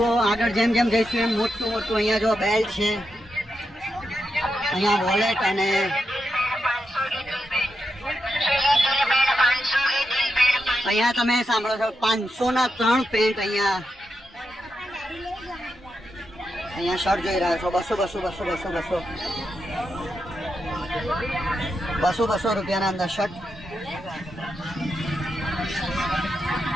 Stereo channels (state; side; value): normal; both; correlation 0.86